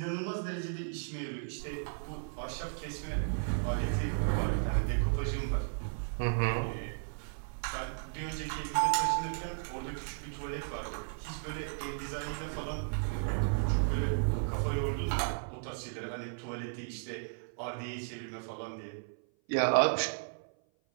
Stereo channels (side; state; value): left; silent; 55 dB below the other